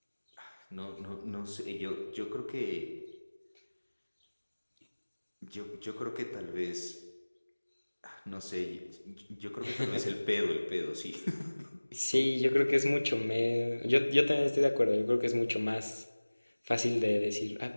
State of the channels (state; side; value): inverted; both; correlation -1.00